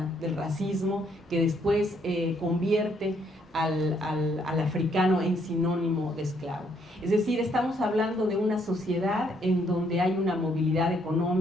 del racismo, que después convierte al africano en sinónimo de esclavo. Es decir, estamos hablando de una sociedad en donde hay una movilidad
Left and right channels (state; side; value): normal; both; correlation 0.70